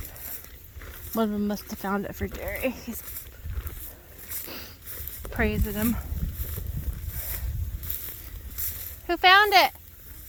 One of them must have found it for Jerry. He's praising him. Who found it?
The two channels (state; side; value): identical; both; correlation 1.00